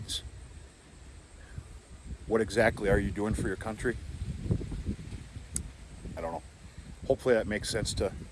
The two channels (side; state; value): both; identical; correlation 1.00